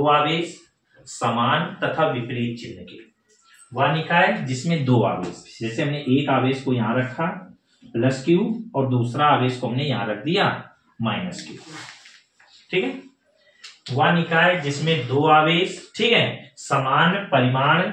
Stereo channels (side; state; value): both; identical; correlation 1.00